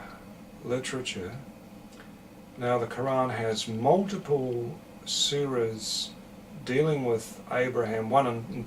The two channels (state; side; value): identical; both; correlation 1.00